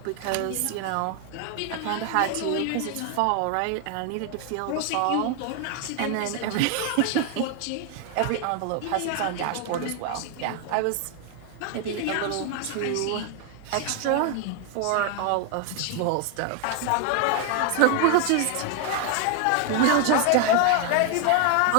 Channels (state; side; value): different; both; correlation 0.00